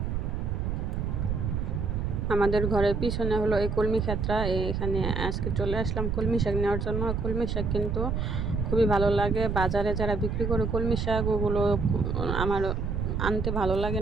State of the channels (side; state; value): right; noise; rumble, 1 dB below the sound